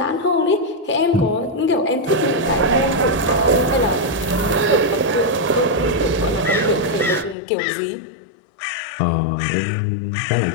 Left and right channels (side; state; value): right; drops out; at 7.4 s